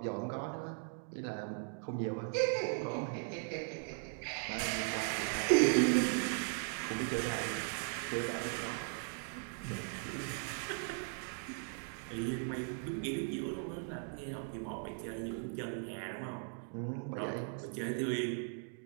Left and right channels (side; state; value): left; silent; 52 dB below the other